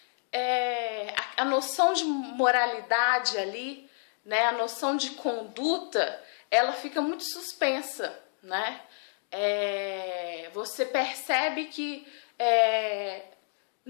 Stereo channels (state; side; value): silent; right; digital silence